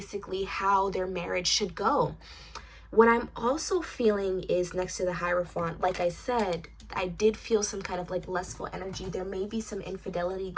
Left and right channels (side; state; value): both; identical; correlation 1.00